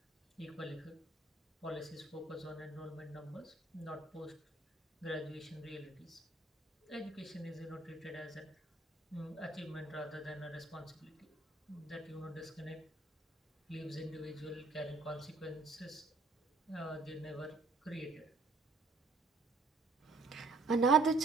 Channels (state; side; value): quieter; left; 3.4 dB